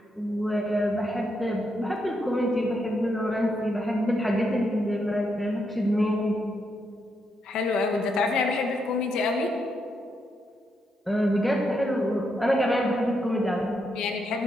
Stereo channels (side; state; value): both; normal; correlation 0.80